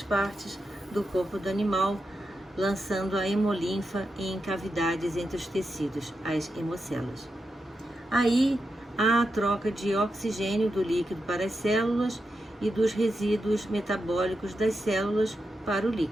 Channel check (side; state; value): both; normal; correlation 0.87